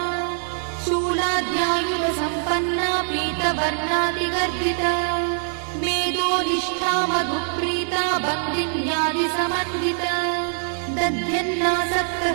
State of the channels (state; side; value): silent; left; digital silence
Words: शूलाद्यायुधसम्पन्ना पीतवर्णातिगर्भिता मेदोनिष्ठा मधुप्रीता बन्दिन्यादिसमन्विता